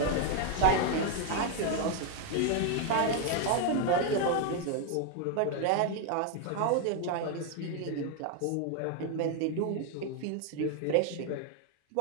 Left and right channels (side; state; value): both; different; correlation 0.00